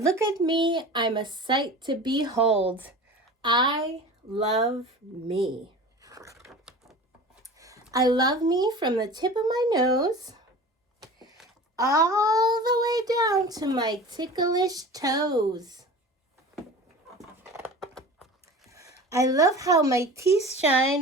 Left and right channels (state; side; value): normal; both; correlation 0.37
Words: at me, I'm a sight to behold. I love me. I love me from the tip of my nose all the way down to my ticklish toes. I love how my teeth